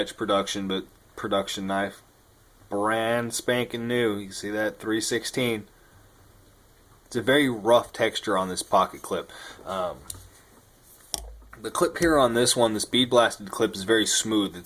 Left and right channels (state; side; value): identical; both; correlation 1.00